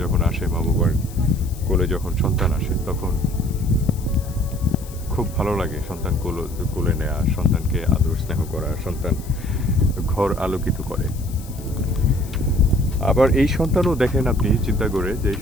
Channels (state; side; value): noise; left; hiss, 19 dB below the sound